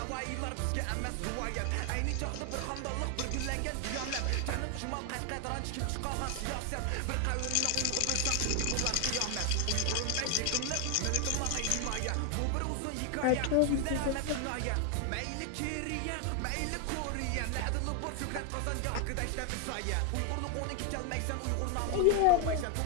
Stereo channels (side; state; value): both; different; correlation 0.00